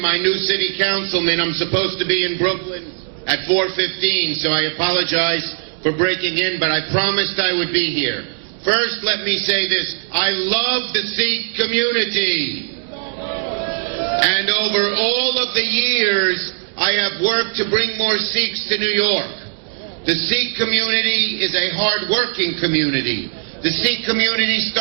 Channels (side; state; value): left; silent; 64 dB below the other